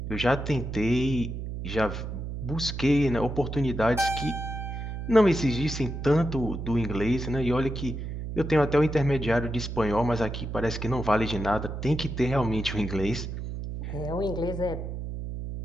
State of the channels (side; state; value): right; noise; hum, 6 dB below the sound